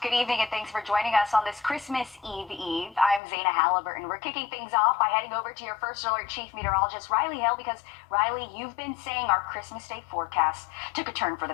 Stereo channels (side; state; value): right; drops out; at 3.2 s